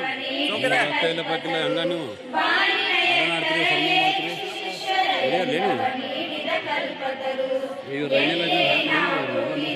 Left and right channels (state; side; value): identical; both; correlation 1.00